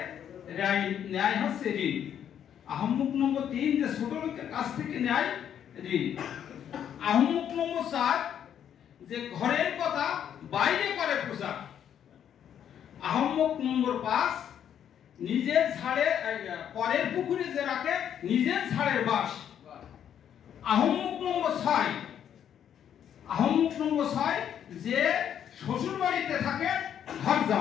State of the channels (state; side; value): quieter; right; 9.4 dB